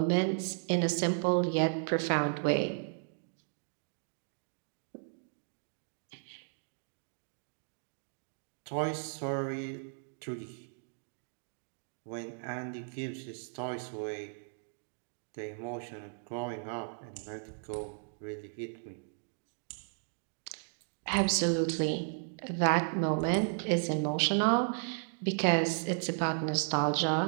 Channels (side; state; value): left; silent; digital silence